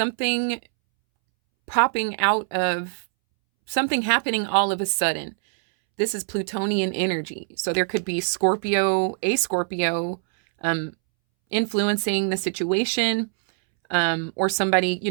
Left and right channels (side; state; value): left; silent; 63 dB below the other